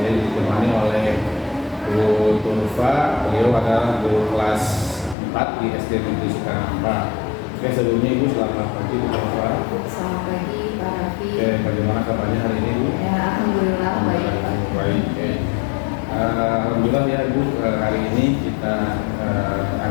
ditemani oleh Bu Turfa. Beliau adalah guru kelas 4 di SD Negeri Sukanhampa. Oke, sebelumnya Ibu selamat pagi Bu Turfa. Selamat pagi Pak Raffi. Oke, bagaimana kabarnya hari ini Bu? Ya, alhamdulillah baik Pak. Baik. Alhamdulillah ya Ibu, hari ini kita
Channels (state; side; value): drops out; right; at 5.2 s